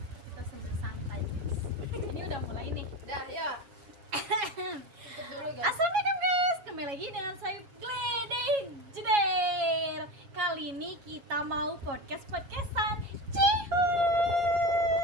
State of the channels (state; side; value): late; left; 7.2 ms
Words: Kita sambil santai guys. Ini udah mulai nih. Dah ya. Tutup dulu guys. Assalamualaikum guys, kembali lagi dengan saya Gledek Jeder. Kali ini kita mau podcastan. Cihuy.